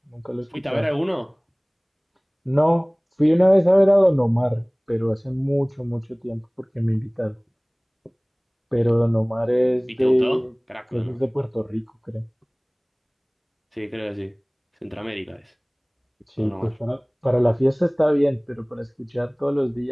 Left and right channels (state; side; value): identical; both; correlation 1.00